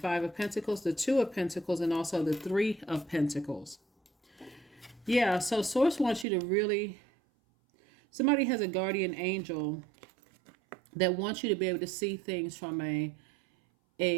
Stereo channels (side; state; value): left; drops out; at 6.2 s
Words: of Pentacles, the Two of Pentacles, and also the Three of Pentacles. Yeah, so source wants you to really, somebody has a guardian angel that wants you to be able to see things from a